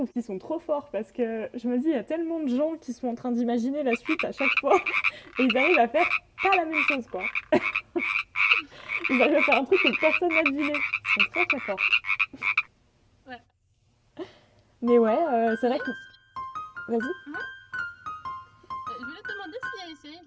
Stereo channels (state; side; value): identical; both; correlation 1.00